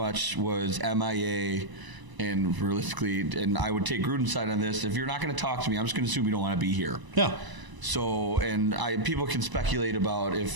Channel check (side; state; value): left; late; 1.0 ms